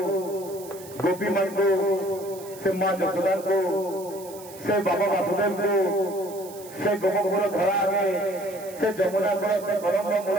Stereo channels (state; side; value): noise; right; hiss, 18 dB below the sound